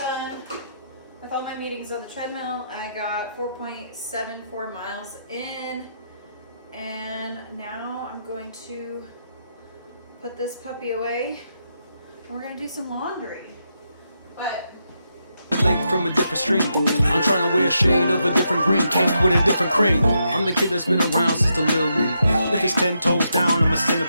done with all my meetings on the treadmill, I got 4.74 miles in, and now I'm going to put this puppy away and we're gonna do some laundry. But lake from a different stream. I'm trying to wear a shade of a different green, cake with a different cream. I'm the kid that's been around since the little league. If it's 10 toes down, I'm a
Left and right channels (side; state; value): both; inverted; correlation -0.82